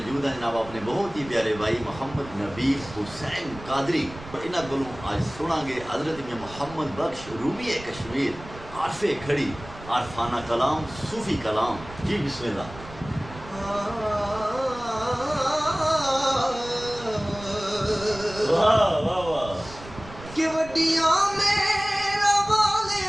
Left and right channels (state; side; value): noise; right; rumble, 16 dB below the sound